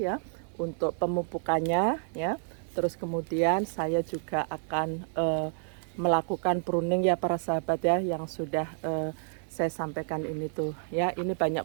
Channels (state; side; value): silent; left; 58 dB below the other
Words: untuk pemupukannya ya. Terus kemudian saya juga akan melakukan pruning ya para sahabat ya, yang sudah saya sampaikan ini tuh ya. Ini banyak